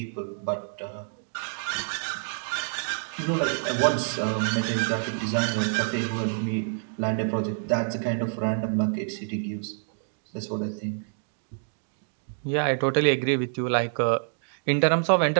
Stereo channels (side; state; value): left; silent; digital silence